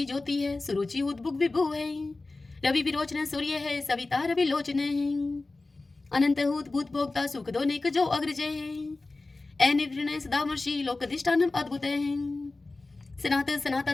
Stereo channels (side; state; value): right; quieter; 3.3 dB